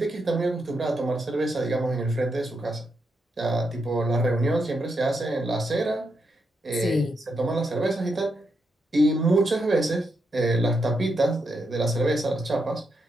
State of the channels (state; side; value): normal; both; correlation 0.82